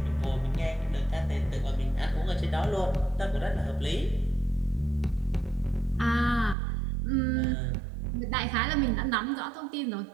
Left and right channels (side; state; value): left; drops out; at 6.6 s